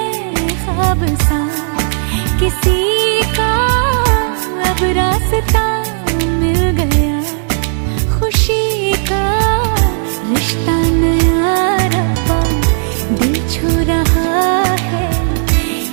ख्वाब सा किसी का, अब रास्ता मिल गया खुशी का। रिश्ता नया रब्बा दिल छू रहा है,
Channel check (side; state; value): left; silent; digital silence